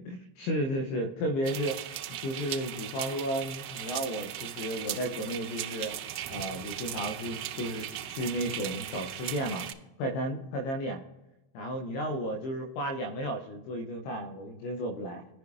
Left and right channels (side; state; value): right; late; 22 ms